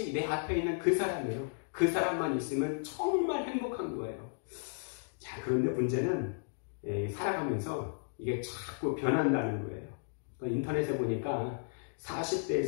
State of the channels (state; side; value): silent; right; digital silence